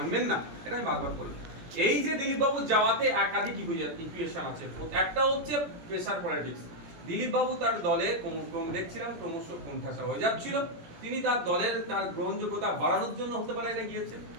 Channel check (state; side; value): late; left; 17 ms